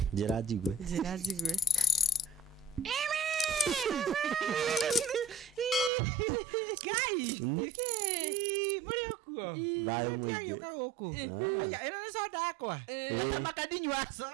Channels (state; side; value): drops out; left; at 5.9 s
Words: Njira njigwe. Guys. Muri okuo. Bayo mwingi. Yoka huko. Aya, ina soda yakwa. Hata makadinywa so.